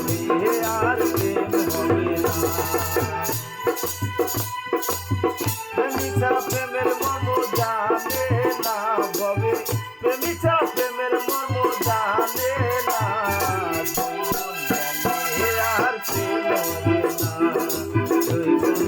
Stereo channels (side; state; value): both; identical; correlation 1.00